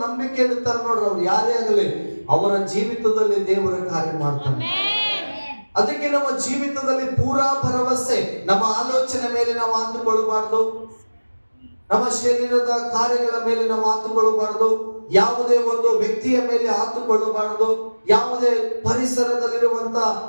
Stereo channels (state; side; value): inverted; both; correlation -1.00